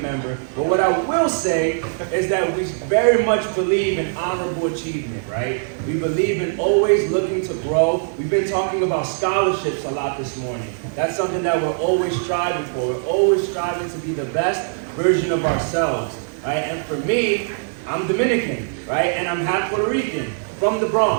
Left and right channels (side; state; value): left; silent; 65 dB below the other